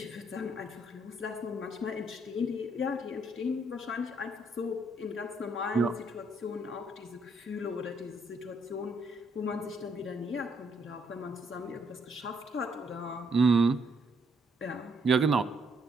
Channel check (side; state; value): both; normal; correlation 0.71